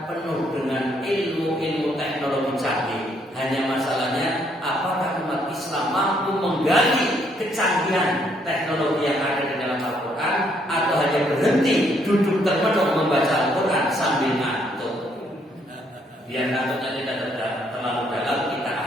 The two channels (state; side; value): normal; both; correlation 0.70